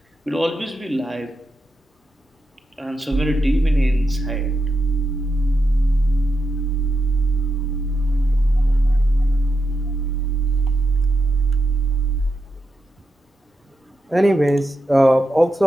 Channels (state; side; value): normal; both; correlation 0.86